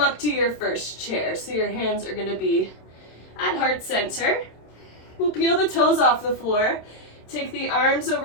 to your first chair. So your hands are gonna be at heart center. We'll peel the toes off the floor. Take the arms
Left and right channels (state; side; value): late; right; 27 ms